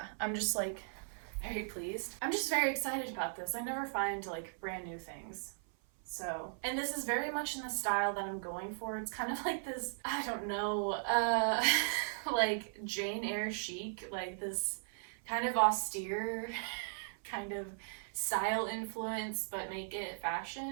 I'm just like very pleased. I'm just very excited about this. I never find like brand new things. So, and this is very much in the style that I'm going for. It's kind of like this, I don't know, like Jane Eyre chic, like this kind of austere kind of style influence, but make it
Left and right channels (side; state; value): left; silent; 53 dB below the other